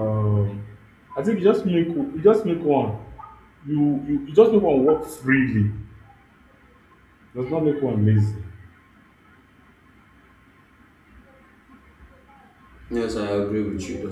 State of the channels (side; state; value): both; identical; correlation 1.00